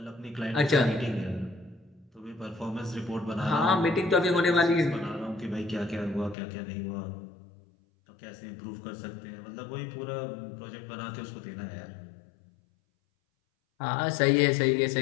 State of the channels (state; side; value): drops out; right; at 6.4 s